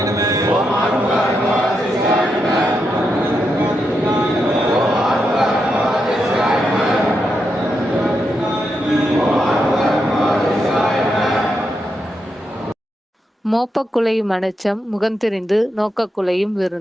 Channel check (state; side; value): normal; both; correlation 0.84